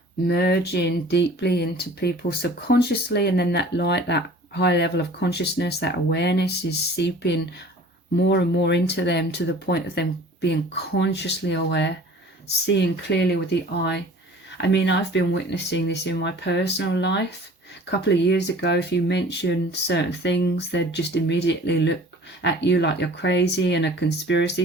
merging deeply into people subconsciously, and then that light, that high level of consciousness, that awareness is seeping more and more into them, to the point of them being consciously aware, seeing clearly with the eye. I mean, I've been witnessing this in my personal life. A couple of years ago, if you mentioned certain things, they'd just immediately look at you like you're crazy and a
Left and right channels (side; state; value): both; normal; correlation 0.46